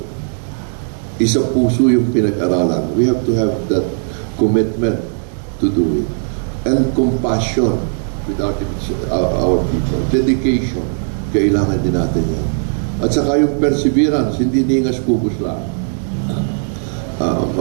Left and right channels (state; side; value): silent; left; digital silence